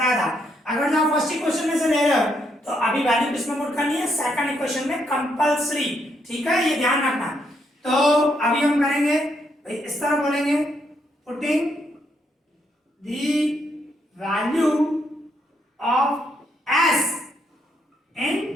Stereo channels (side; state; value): both; normal; correlation 0.76